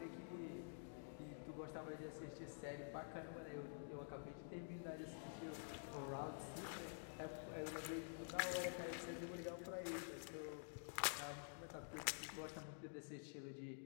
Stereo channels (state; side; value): silent; right; digital silence